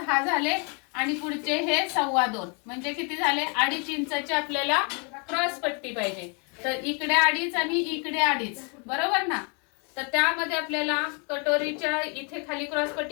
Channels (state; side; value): quieter; right; 35.7 dB